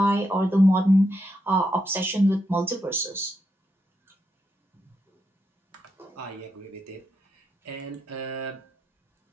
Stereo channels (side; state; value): both; normal; correlation 0.82